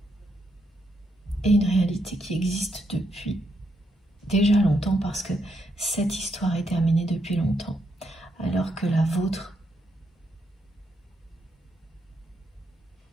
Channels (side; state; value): both; normal; correlation 0.78